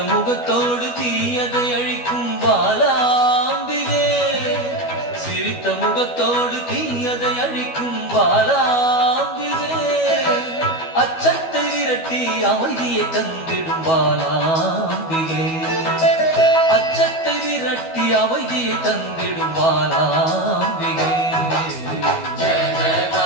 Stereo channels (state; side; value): late; right; 12 ms